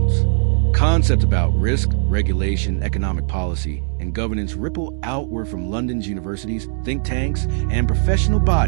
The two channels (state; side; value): silent; left; digital silence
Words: Concepts about risk, regulation, economic policy, and governance ripple outward from London's universities, think tanks, and professional